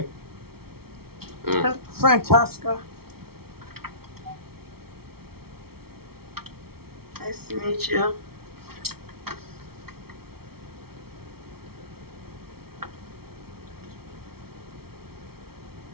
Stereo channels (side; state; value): left; late; 0.95 ms